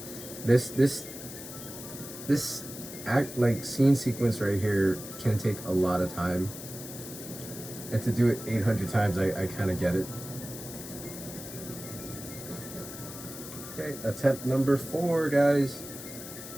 this act like scene sequence right here can take a lot of time, and to do it 800 times, I kind of get it. Okay, attempt number 4, guys.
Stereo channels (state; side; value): noise; left; hiss, 12 dB below the sound